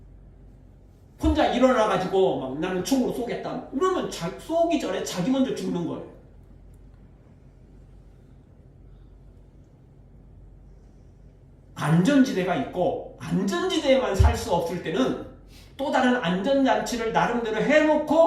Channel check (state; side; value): identical; both; correlation 1.00